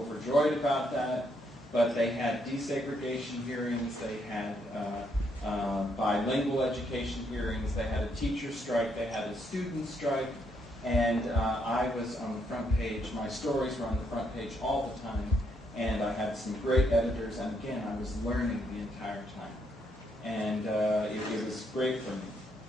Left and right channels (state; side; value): normal; both; correlation 0.75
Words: about that, but they had desegregation hearings, they had bilingual education hearings, they had a teacher strike, they had a student strike, and I was on the front page. My stories were on the front page all the time, and I had some great editors, and again, I was learning the entire time. And it was great for me.